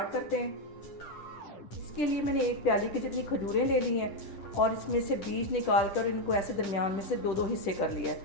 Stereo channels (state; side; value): late; right; 10 ms